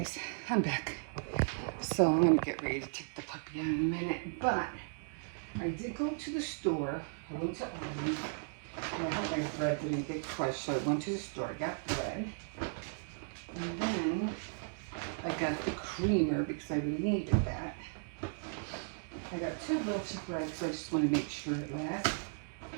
I'm back. So I'm gonna get ready to take the puppy out in a minute. But I did go to the store. I went to Aldi. I hope my bread didn't get crushed, so I went to the store. I got bread. And then I got the creamer because I really needed that. I got 2 loaves of bread, so I just want to make sure it lasts.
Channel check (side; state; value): left; silent; digital silence